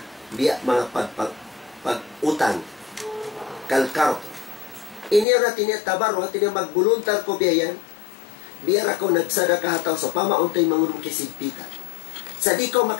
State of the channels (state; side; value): drops out; right; at 5.2 s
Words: Biya mga pag-utang. Kalkard. Ini na tinya tabarru tinya mag-voluntar ko biyan. Biar ako nagsadaka hataw sa pamauntay mangurong kisigpitan. Sa di ko